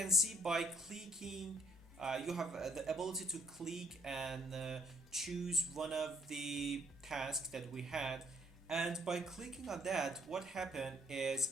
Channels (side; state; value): both; normal; correlation 0.64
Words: see, by clicking you have the ability to click and choose one of the tasks that we had, and by clicking on that, what happened